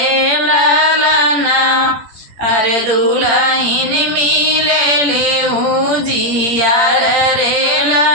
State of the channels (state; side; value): late; left; 18 ms